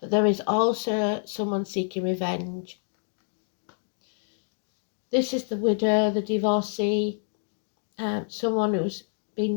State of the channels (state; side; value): silent; right; 59 dB below the other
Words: there is also someone seeking revenge. This is the widow, the divorcee, someone who's